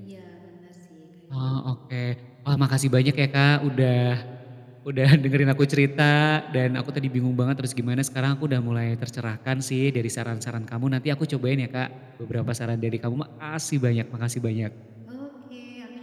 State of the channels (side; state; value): both; identical; correlation 1.00